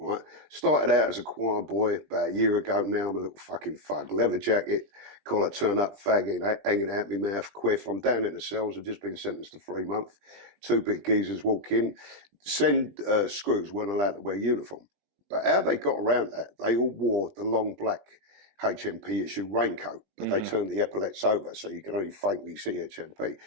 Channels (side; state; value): left; late; 20 ms